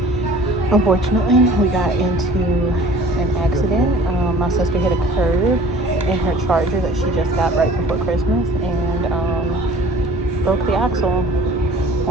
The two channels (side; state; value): both; normal; correlation 0.48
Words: unfortunately, we got into an accident. My sister hit a curb in her Charger that she just got right before Christmas, and broke the axle